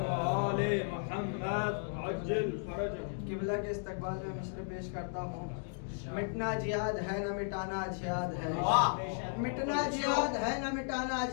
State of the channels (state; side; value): silent; right; digital silence